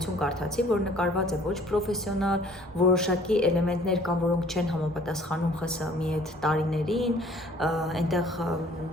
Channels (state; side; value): normal; both; correlation 0.55